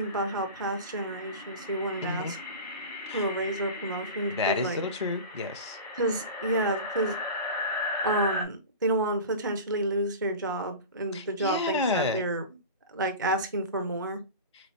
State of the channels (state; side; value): inverted; both; correlation -0.30